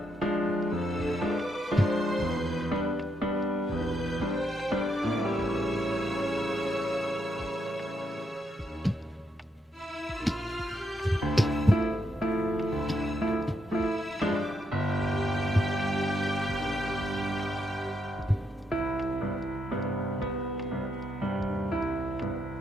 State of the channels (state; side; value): normal; both; correlation 0.79